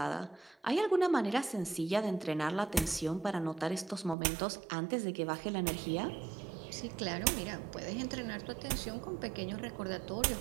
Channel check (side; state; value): left; drops out; at 4.2 s